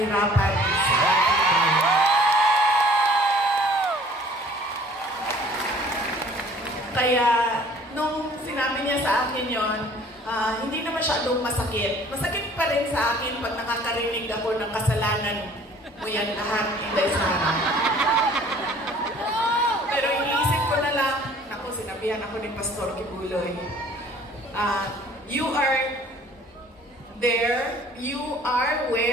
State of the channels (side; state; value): both; normal; correlation 0.53